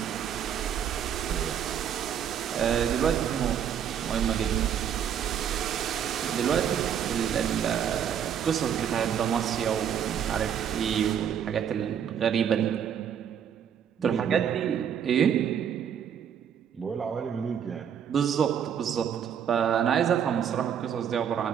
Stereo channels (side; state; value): left; quieter; 8.6 dB